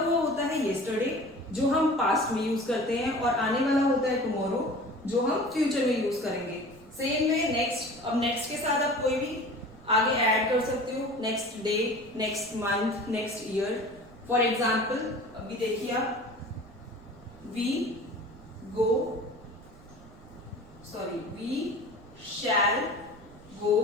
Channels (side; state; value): right; noise; rumble, 22 dB below the sound